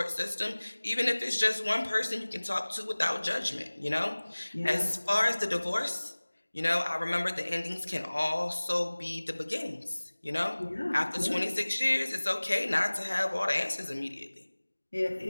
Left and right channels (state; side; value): inverted; both; correlation -1.00